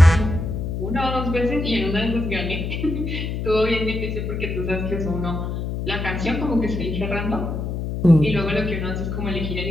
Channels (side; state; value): left; noise; hum, 3 dB below the sound